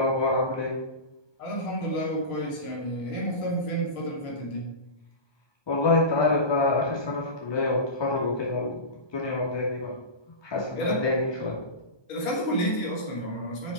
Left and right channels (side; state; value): right; late; 1.2 ms